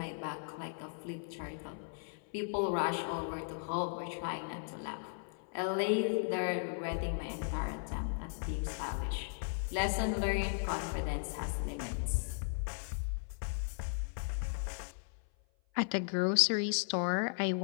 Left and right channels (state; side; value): silent; right; 53 dB below the other